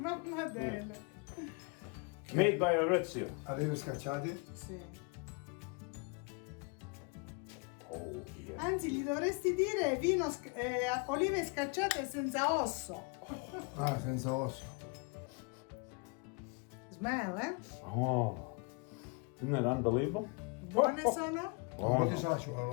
Adele. Made by Maurizio. Olive scacciati. Sì. Oh, yeah. Anzi, gli dovresti dire olive scacciate senza osso. Ah, senza osso. Smell, eh? Oh, isn't that unbelievable? Buone sono? Un po' di sale ci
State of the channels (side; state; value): right; quieter; 32.0 dB